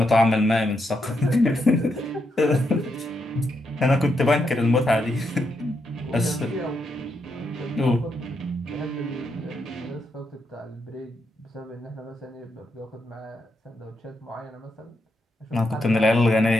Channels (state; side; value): normal; both; correlation 0.81